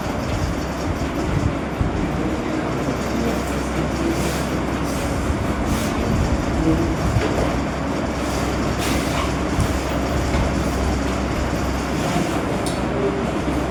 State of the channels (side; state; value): both; identical; correlation 1.00